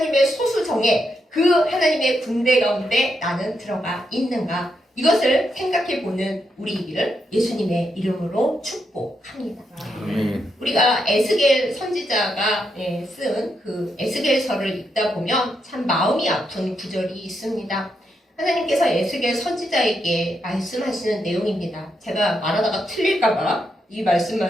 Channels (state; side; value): normal; both; correlation 0.81